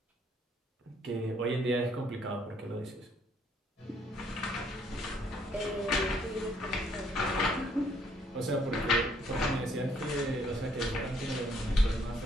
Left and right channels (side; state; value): both; normal; correlation 0.66